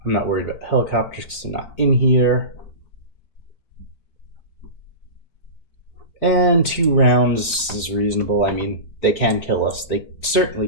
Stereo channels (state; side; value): late; right; 4.5 ms